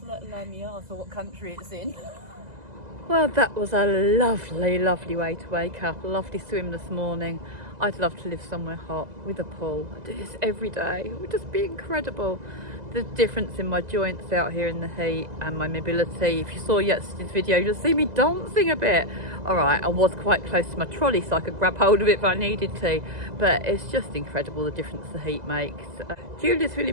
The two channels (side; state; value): left; late; 2.0 ms